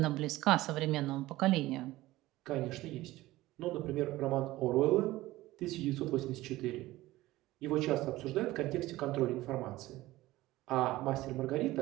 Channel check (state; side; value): quieter; left; 17.4 dB